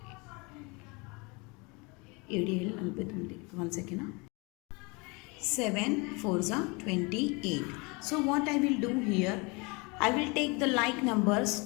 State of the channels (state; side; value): quieter; right; 28.5 dB